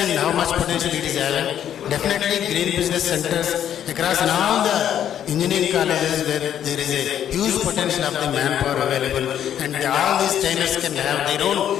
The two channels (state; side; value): quieter; right; 10.0 dB